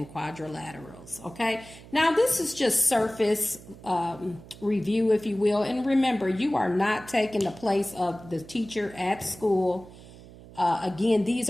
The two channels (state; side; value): noise; right; hum, 19 dB below the sound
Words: quadrilaterals. Okay, now this is just surface review, if you will. And remember, you are not taking the place of the teacher at school. Again, these